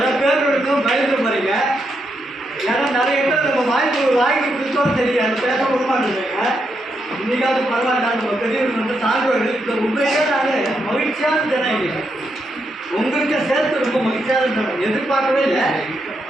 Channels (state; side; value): normal; both; correlation 0.81